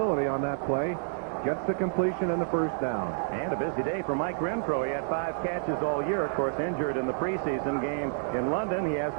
on that play. Gets the completion and the first down. And a busy day for Mike Renfro. He had 5 catches all year, of course, injured in the preseason game in London. He has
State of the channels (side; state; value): left; silent; digital silence